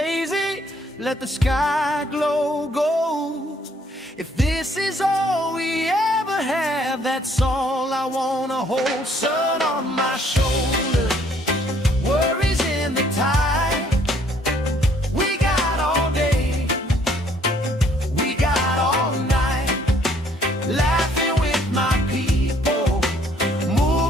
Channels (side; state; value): both; normal; correlation 0.63